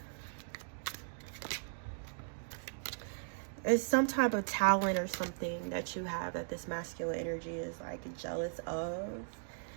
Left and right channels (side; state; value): left; silent; digital silence